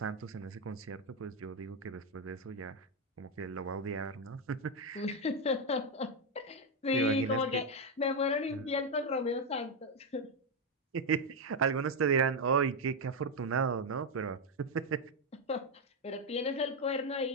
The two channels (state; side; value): normal; both; correlation 0.05